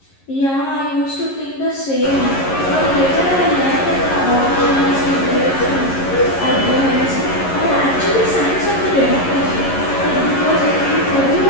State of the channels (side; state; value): right; late; 11 ms